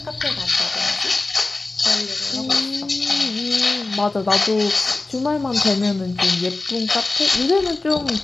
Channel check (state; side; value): quieter; right; 3.2 dB